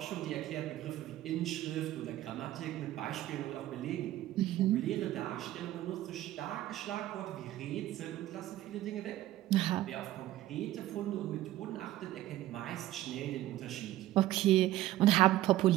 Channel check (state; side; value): quieter; left; 14.6 dB